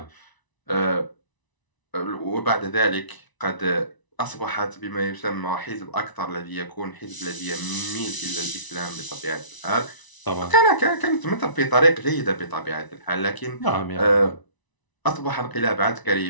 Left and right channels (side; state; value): right; late; 1.0 ms